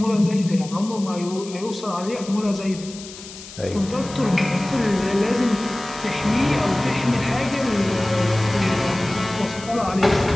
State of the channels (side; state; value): left; noise; hiss, 15 dB below the sound